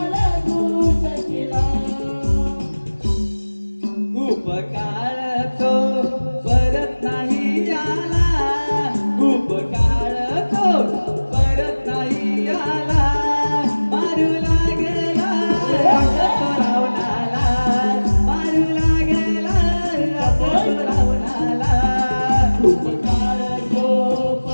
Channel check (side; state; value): both; inverted; correlation -1.00